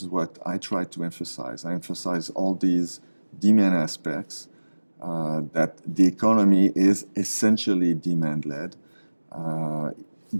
what I try to emphasize. I emphasize all these demand aspects, that the economy is essentially demand-led,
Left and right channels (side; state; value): both; inverted; correlation -1.00